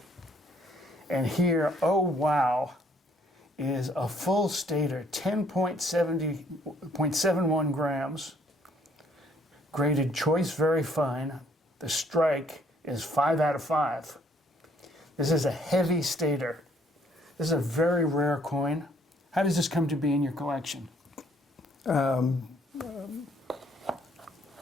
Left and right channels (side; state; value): both; normal; correlation 0.64